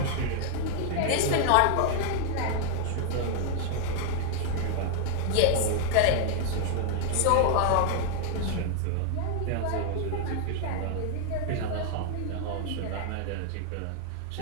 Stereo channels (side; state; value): both; different; correlation 0.00